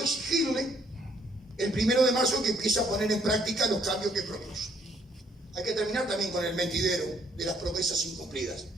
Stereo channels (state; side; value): normal; both; correlation 0.66